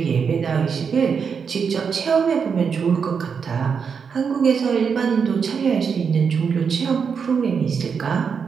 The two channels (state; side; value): quieter; left; 6.2 dB